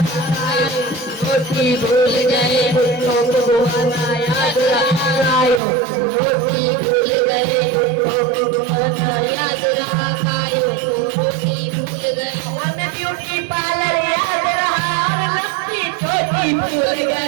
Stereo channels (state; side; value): drops out; left; at 5.6 s